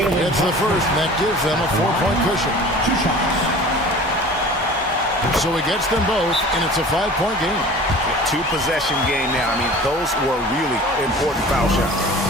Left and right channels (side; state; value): both; normal; correlation 0.42